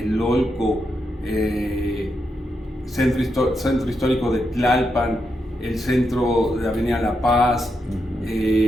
Centro Histórico de Tlalpan, el centro de Avenida La Paz,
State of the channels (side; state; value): both; normal; correlation 0.84